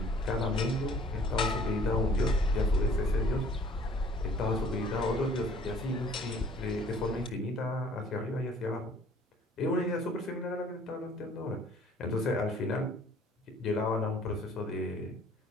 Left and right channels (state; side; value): normal; both; correlation 0.54